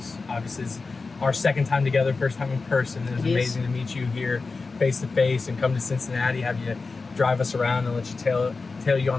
Obviously, it's our second time together, first time in person. It was amazing to meet you here face to face and come to Cincinnati, have you drive us around and let you tail you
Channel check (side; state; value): right; quieter; 4.1 dB